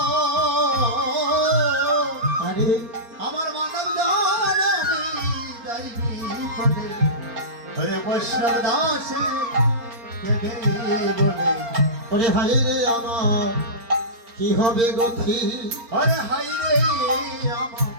আরে আমার মানব জানি যাইবি পদে হরে বৈষ্ণব দাসে কেদে বলে ওরে হাই রে আমার কি হবে গতি হরে হাই রে আমার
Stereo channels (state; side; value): late; left; 4.4 ms